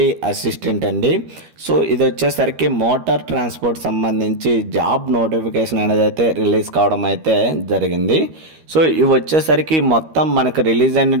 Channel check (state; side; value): late; left; 13 ms